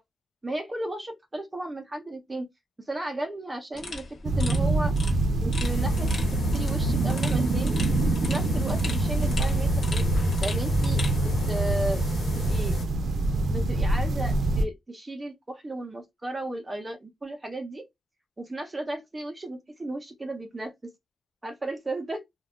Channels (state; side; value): normal; both; correlation 0.79